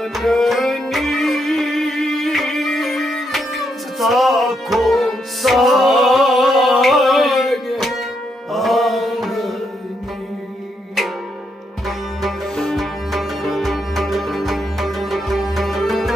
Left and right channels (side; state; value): both; normal; correlation 0.79